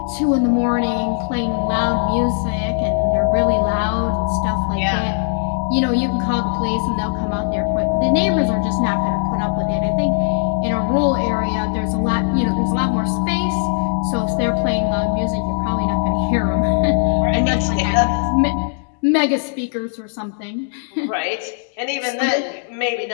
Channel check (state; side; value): silent; right; digital silence